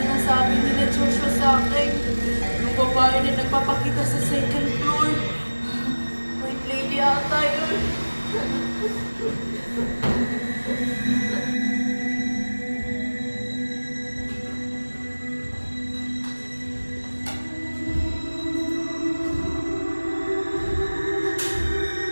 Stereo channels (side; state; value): both; inverted; correlation -1.00